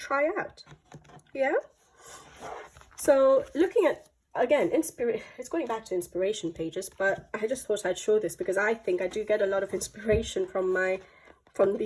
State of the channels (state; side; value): identical; both; correlation 1.00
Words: out. Yeah. So looking at, again, it's going back to inspiration pages, but I just thought I'd show this because I think I do get a lot of inspiration from